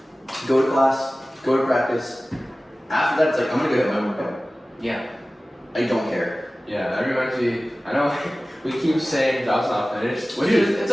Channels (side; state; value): both; normal; correlation 0.97